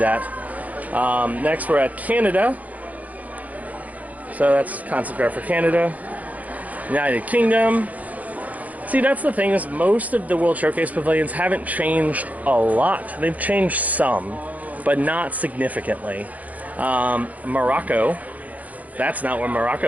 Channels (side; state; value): left; late; 0.075 ms